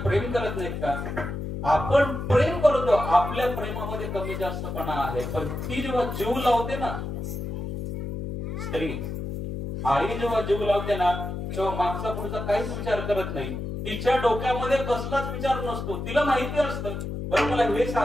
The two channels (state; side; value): noise; left; hum, 5 dB below the sound